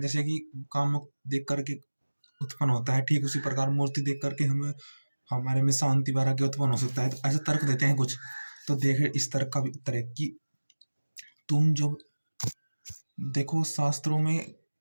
कि काम देख करके उत्पन्न होता है, ठीक उसी प्रकार मूर्ति देख करके हमें हमारे में शांति वैराग्य उत्पन्न हो सकता है। तो ऐसे तर्क देते हैं कुछ। तो देखे इस तर्क का भी उत्तर है कि तुम जब देखो शास्त्रों में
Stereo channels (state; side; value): inverted; both; correlation -1.00